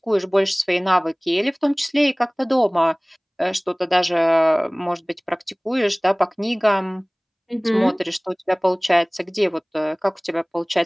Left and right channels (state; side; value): identical; both; correlation 1.00